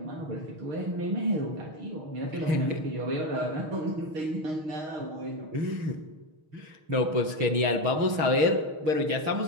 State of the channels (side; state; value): left; late; 6.4 ms